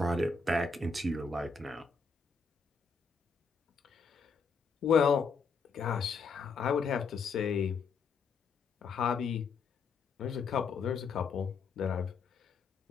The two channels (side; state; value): right; quieter; 4.9 dB